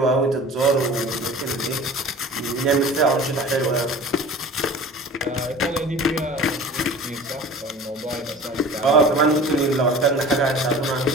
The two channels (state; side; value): normal; both; correlation 0.41